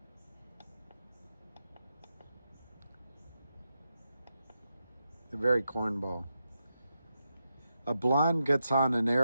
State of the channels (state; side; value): inverted; both; correlation -0.87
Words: A very cornball. A blonde gets on an